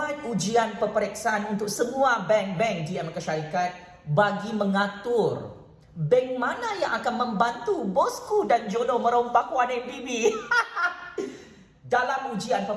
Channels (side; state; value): both; identical; correlation 1.00